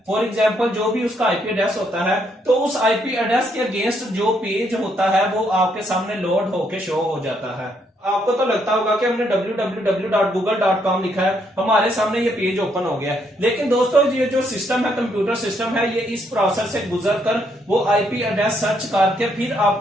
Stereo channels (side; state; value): both; normal; correlation 0.73